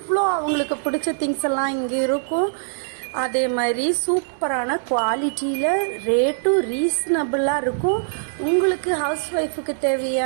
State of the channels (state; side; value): silent; left; digital silence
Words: அவங்களுக்கு பிடிச்ச திங்ஸ் எல்லாம் இங்க இருக்கும். அதே மாதிரி சூப்பரான குவாலிட்டியில ரேட்டும் ரீசனபிளா இருக்கும். உங்களுக்கு ஹவுஸ் ஒய்ஃபுக்கு